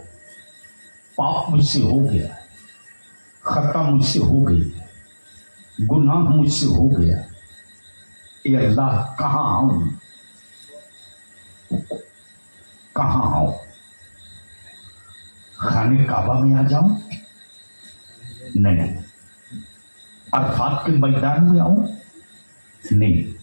पाप मुझसे हो गया, खता मुझसे हो गई, गुनाह मुझसे हो गया। ए अल्लाह, कहां आऊं, कहां आऊं? खाने काबा में आ जाऊं? नहीं। अरफात के मैदान में आऊं? नहीं।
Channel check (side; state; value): both; inverted; correlation -1.00